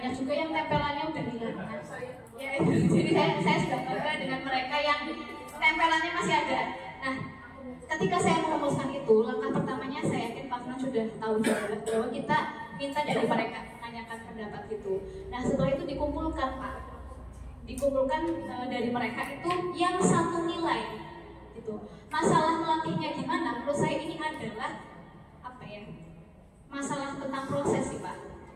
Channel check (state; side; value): identical; both; correlation 1.00